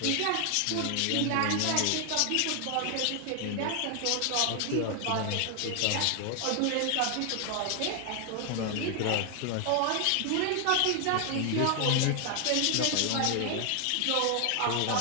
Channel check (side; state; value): both; different; correlation 0.00